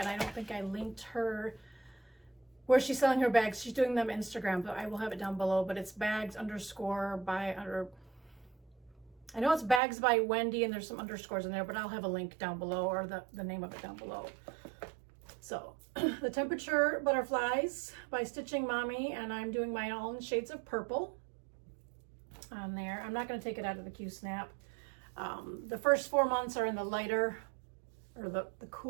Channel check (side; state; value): left; drops out; at 9.8 s